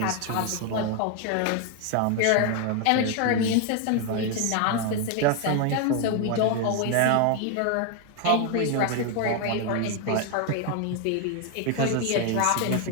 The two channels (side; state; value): both; different; correlation 0.01